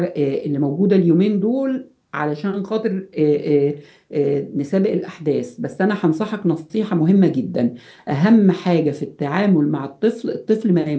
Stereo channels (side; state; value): both; identical; correlation 1.00